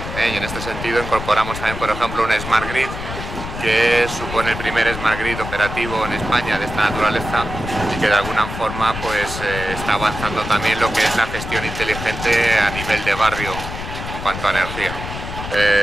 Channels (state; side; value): noise; left; rumble, 8 dB below the sound